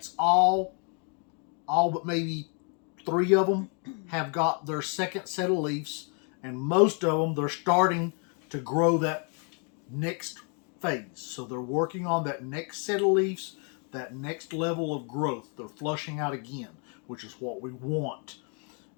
all but maybe 3 of them have got their second set of leaves, and most of them, they're starting to grow that next phase. So they're working on that next set of leaves, that next level of growth. They're flushing out again, which is what we want.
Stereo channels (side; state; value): right; quieter; 39.0 dB